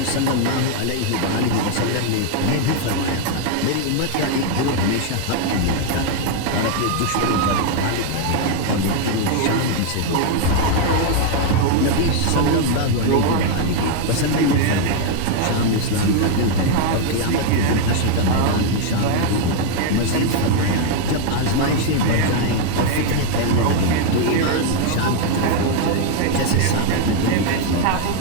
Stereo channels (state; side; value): different; both; correlation 0.00